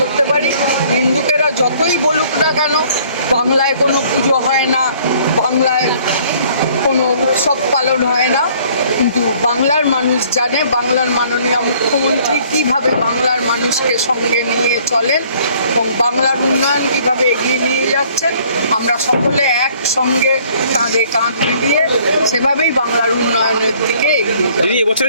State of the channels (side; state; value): both; inverted; correlation -0.58